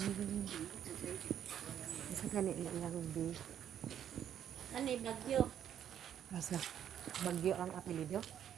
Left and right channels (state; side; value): quieter; left; 9.8 dB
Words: Unsa kay ni iyang bi? Ano Bagyo? Asa? Bagyo ang apelyido?